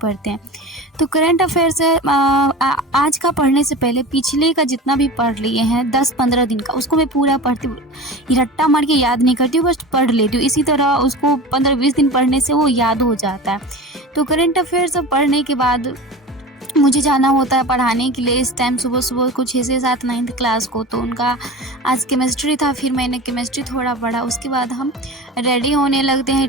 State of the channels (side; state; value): both; normal; correlation 0.33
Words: हैं। तो करंट अफेयर्स आज का पढ़ने से पहले पिछले का जितना भी पढ़ लिए हैं 10-15 दिन का, उसको मैं पूरा पढ़ती हूँ। रट्टा मार के याद नहीं करती हूँ, बस पढ़ लेती हूँ। इसी तरह उसको 15-20 दिन पढ़ने से वो याद हो जाता है। तो करंट अफेयर्स पढ़ने के बाद मुझे जाना होता है पढ़ाने के लिए। इस टाइम सुबह को 6 से 7 9th क्लास को, तो उनका आज केमिस्ट्री था। फिर मैंने केमिस्ट्री थोड़ा पढ़ा। उसके बाद हम रेडी होने लगते हैं